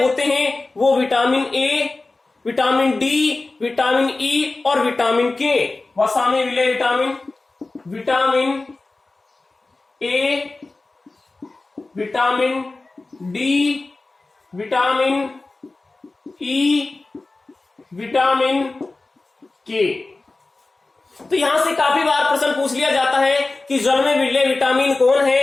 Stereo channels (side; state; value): right; quieter; 3.3 dB